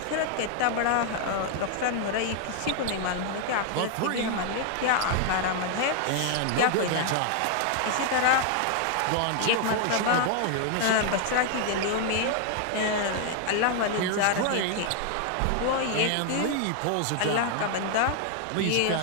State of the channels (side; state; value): both; different; correlation 0.00